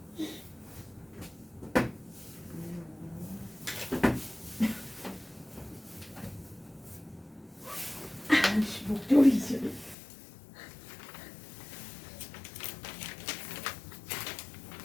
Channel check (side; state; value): right; drops out; at 10.0 s